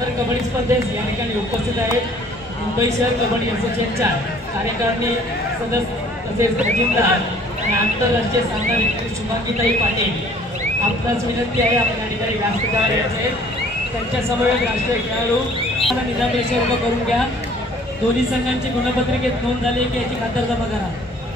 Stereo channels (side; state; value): both; normal; correlation 0.55